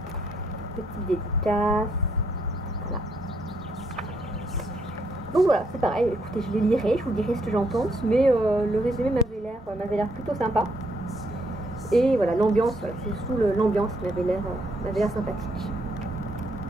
petite dédicace, voilà. Donc voilà, c'est pareil, écoutez, je les lirai, je vous dirai ce que j'en pense, mais le résumé m'avait l'air plutôt sympa. Et voilà, l'ambiance, voilà, c'est surtout l'ambiance qui m'avait l'air sympathique.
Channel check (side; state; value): both; normal; correlation 0.73